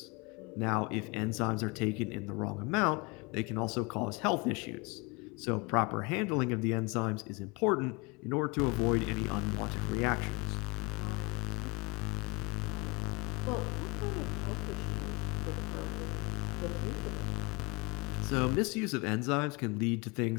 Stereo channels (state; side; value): quieter; right; 27.6 dB